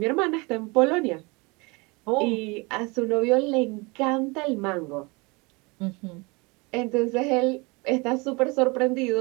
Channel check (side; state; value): left; quieter; 27.1 dB